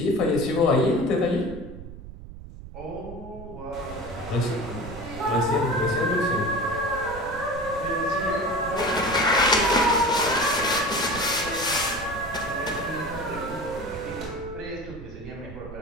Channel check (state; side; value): noise; right; rumble, 14 dB below the sound